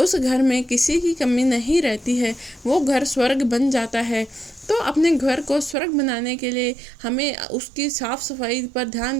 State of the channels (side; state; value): left; drops out; at 5.8 s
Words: घर में किसी की कमी नहीं रहती है, वो घर स्वर्ग बन जाता है। तो अपने घर को स्वर्ग बनाने के लिए हमें उसकी साफ़ सफाई पर ध्यान